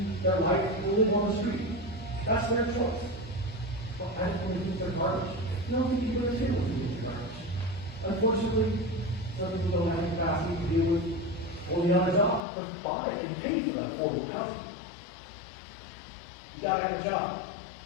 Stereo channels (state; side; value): drops out; right; at 12.4 s